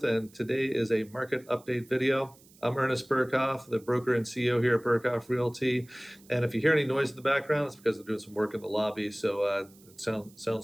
and today is a market update video. I'm Ernest Burkhoff, the broker and CEO here at Burkhoff Realty. And if you hear any noise in the background, it's because they're doing some work in the lobby. So it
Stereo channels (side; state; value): right; noise; hiss, 27 dB below the sound